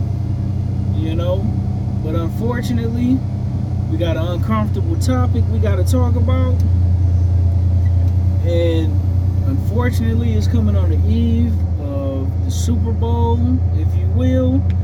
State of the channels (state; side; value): identical; both; correlation 1.00